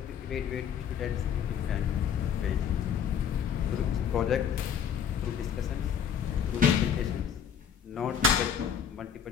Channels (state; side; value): quieter; right; 7.9 dB